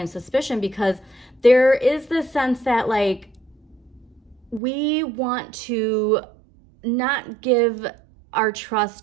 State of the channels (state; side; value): drops out; left; at 4.6 s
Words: suspicion, because there is this sense that, like, we want to not give our